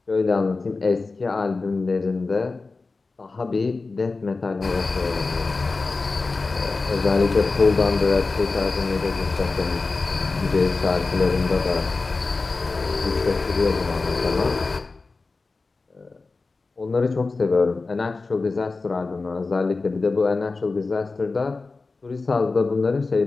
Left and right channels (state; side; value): quieter; right; 3.8 dB